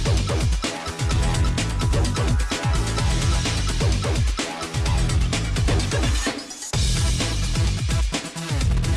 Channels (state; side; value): identical; both; correlation 1.00